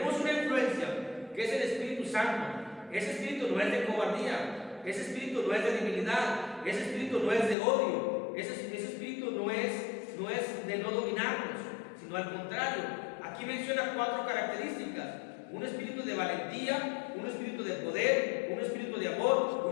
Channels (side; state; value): right; drops out; at 7.6 s